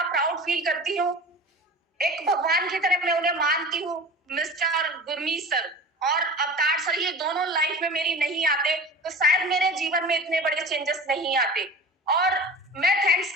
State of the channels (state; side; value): normal; both; correlation 0.36